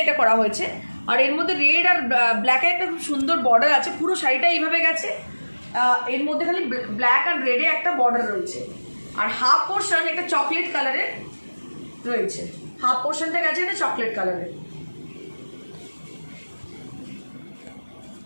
এটা করা হয়েছে। আর এর মধ্যে রেড আর ব্ল্যাকের একটা খুব সুন্দর বর্ডার আছে। পুরো শাড়িটা এইভাবে গেছে, এর মধ্যে খালি ব্ল্যাক আর রেডে একটা বর্ডার রয়েছে, আর হাফ পোর্শন একটা চকলেট কালারের রয়েছে, হাফ পোর্শনটা গেছে এটা চকলেট কালারের।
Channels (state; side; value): inverted; both; correlation -1.00